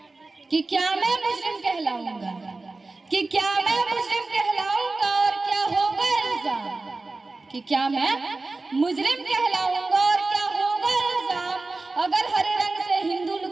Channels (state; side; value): quieter; left; 3.4 dB